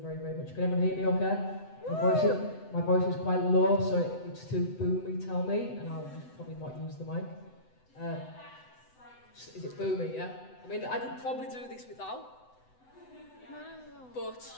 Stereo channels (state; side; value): late; right; 7.9 ms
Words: very, very much. Can everyone hear me okay? My voice is quite low, so if it's too boomy, tell me, and I'll probably not use the mic. Is it boomy, yeah? I mean, I could probably do this without, but